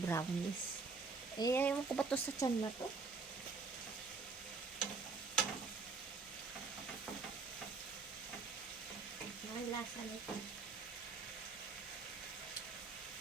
Eh, ayaw ko ba to sa tiyan na to? Ang lasa nito.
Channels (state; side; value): quieter; left; 4.4 dB